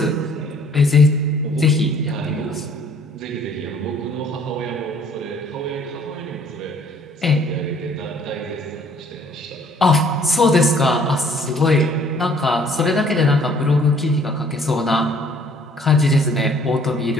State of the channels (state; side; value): normal; both; correlation 0.58